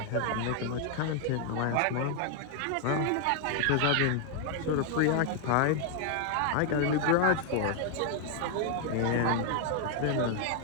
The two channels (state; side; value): different; both; correlation 0.00